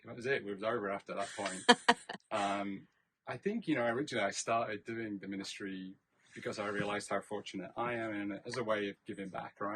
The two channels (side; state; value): both; identical; correlation 1.00